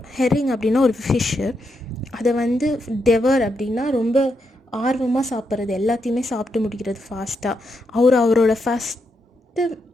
ஹெரிங் அப்படின்னா ஒரு ஃபிஷ்ஷு, அதை வந்து டெவர் அப்படின்னா ரொம்ப ஆர்வமாக சாப்பிட்றது, எல்லாத்தையுமே சாப்பிட்டு முடிக்கிறது ஃபாஸ்ட்டாக. அவரோட ஃபஸ்ட்டு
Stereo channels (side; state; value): both; normal; correlation 0.82